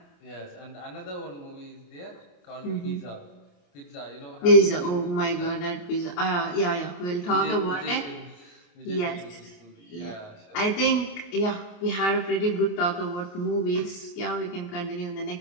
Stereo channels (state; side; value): late; right; 28 ms